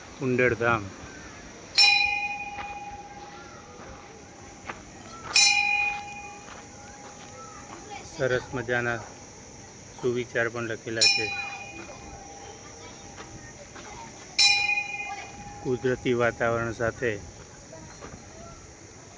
કુંડળ ધામ. સરસ મજાના સુવિચાર પણ લખેલા છે. કુદરતી વાતાવરણ સાથે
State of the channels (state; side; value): identical; both; correlation 1.00